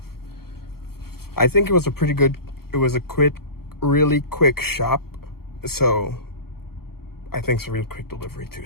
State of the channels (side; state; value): right; late; 0.95 ms